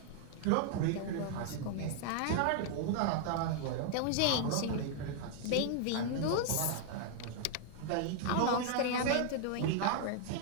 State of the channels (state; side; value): different; both; correlation 0.00